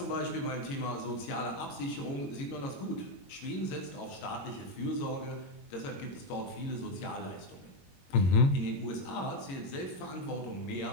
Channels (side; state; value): right; late; 22 ms